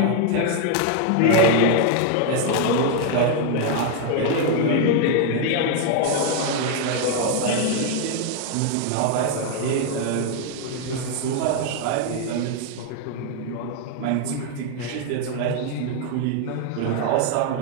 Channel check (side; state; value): both; different; correlation 0.00